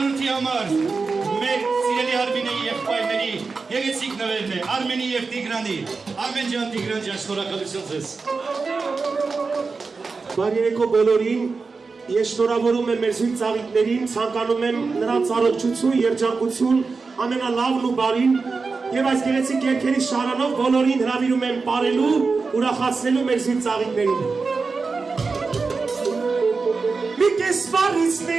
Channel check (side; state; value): left; quieter; 4.4 dB